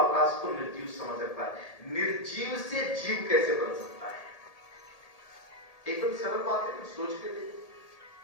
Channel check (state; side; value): late; right; 1.8 ms